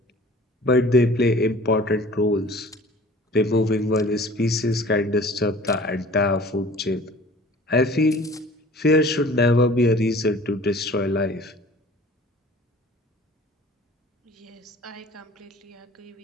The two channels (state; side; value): normal; both; correlation 0.46